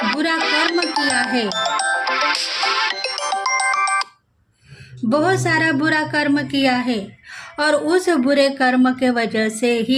बुरा कर्म किया है, बहुत सारा बुरा कर्म किया है, और उस बुरे कर्म के वजह से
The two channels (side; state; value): both; identical; correlation 1.00